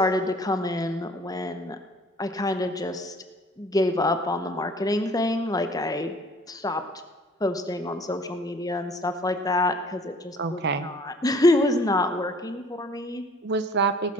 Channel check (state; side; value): normal; both; correlation 0.53